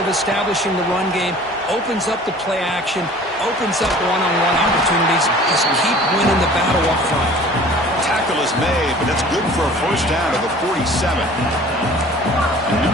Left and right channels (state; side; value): normal; both; correlation 0.47